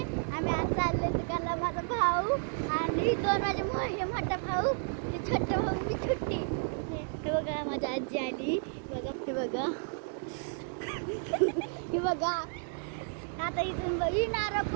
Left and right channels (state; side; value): silent; left; 56 dB below the other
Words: आम्ही आज चालले दुकानला. माझा भाऊ आणि दोन माझे मोठा भाऊ, ते छोटे भाऊ, मी छोटी. हे बघा माझी आजी आली. बघा हे बघा. हे बघा आता इथून येणार